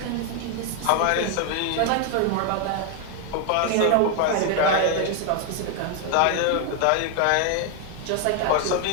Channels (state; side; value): different; both; correlation 0.01